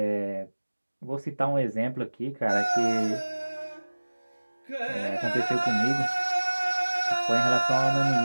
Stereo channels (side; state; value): both; inverted; correlation -1.00